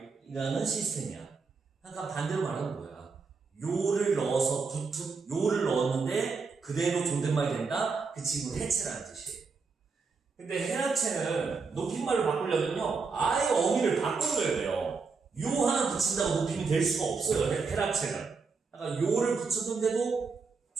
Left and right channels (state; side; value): quieter; left; 4.8 dB